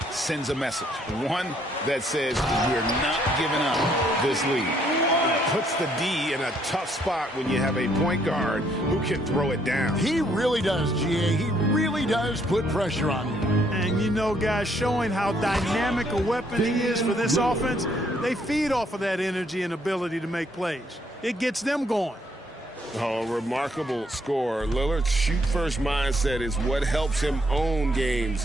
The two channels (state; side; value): normal; both; correlation 0.69